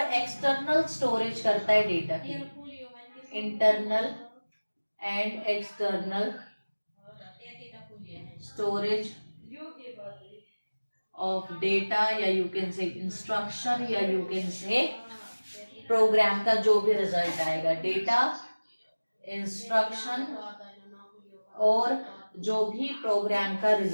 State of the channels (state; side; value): inverted; both; correlation -1.00